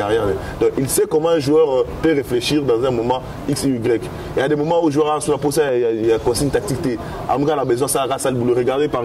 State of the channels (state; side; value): identical; both; correlation 1.00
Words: Donc il sait comment un joueur peut réfléchir dans un moment X et Y. Il y a des moments où le joueur sur la pose, il y a consigne tactique. Amga a besoin ça à le boulot. Regardez par